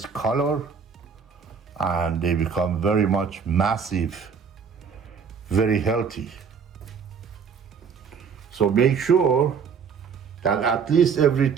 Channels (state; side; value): quieter; left; 6.2 dB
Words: color, and they become very much massive, very healthy. So make sure that at least every